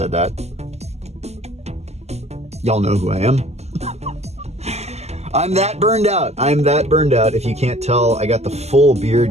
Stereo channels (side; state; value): left; late; 0.31 ms